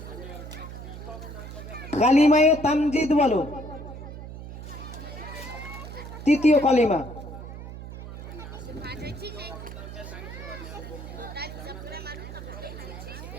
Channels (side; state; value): right; noise; hum, 11 dB below the sound